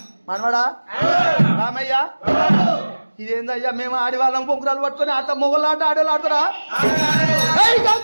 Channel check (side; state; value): both; inverted; correlation -1.00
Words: మనవాడా రామయ్య ఇదేందయ్యా మేము ఆడివాళ్ళం బొంగురాలు పట్టుకొని ఆట మొగలాట ఆడేవాళ్ళు ఆడతారా